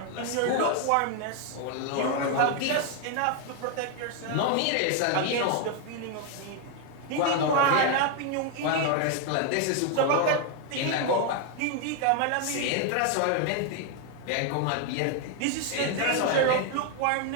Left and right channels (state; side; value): different; both; correlation 0.01